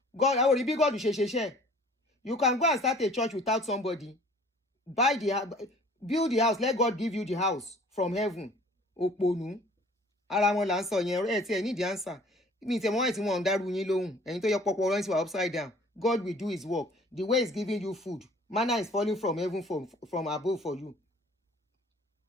God, I will be God. You can go and start a church without somebody. Build the house. Let God give you the house from heaven. Oponu. Ara wọn là ń sọ yẹn ẹ tí ẹ need the answer. Mi tẹ mọ́ ẹ̀ tí wọ́n ń dárú yín lóhùn. Ẹ̀yin tó yẹ pọpọ ọ̀rọ̀ yín upside down. God will do his work. The way he's giving you food. Manna is falling from heaven from above for you.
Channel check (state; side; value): normal; both; correlation 0.51